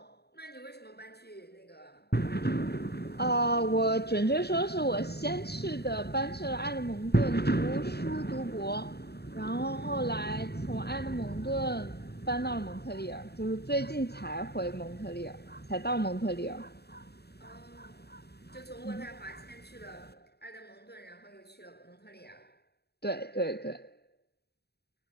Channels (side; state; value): right; late; 0.47 ms